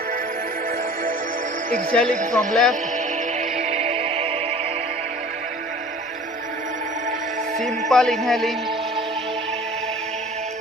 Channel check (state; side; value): normal; both; correlation 0.45